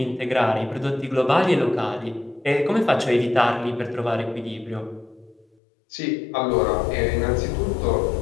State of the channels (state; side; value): drops out; right; at 5.5 s